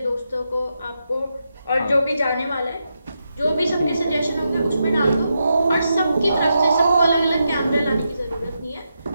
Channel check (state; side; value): inverted; both; correlation -0.85